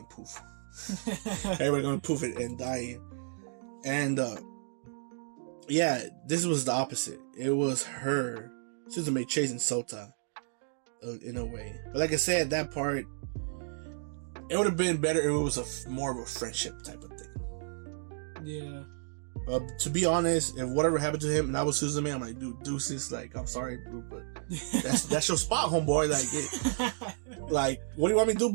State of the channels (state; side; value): silent; left; digital silence